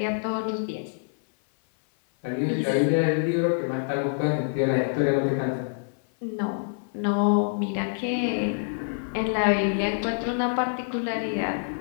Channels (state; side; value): silent; right; 56 dB below the other